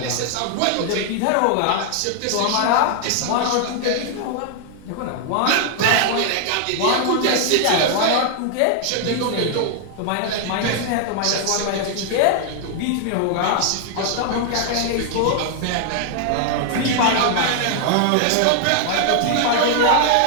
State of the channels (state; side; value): different; both; correlation 0.00